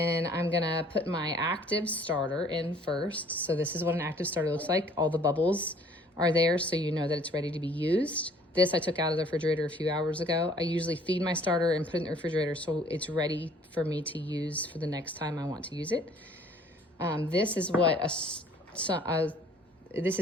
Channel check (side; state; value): both; normal; correlation 0.57